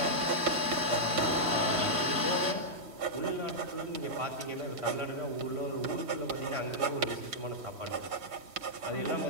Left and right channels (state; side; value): late; left; 3.1 ms